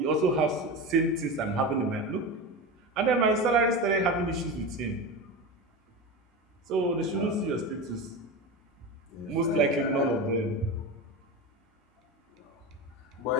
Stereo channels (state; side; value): normal; both; correlation 0.24